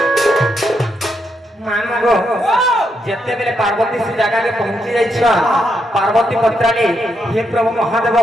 যেতেবেলে পার্বতী সে জায়গাকে পৌঁছি যাইছ পার্বতী পত্রালি হে প্রভু মহাদেব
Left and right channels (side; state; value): both; normal; correlation 0.80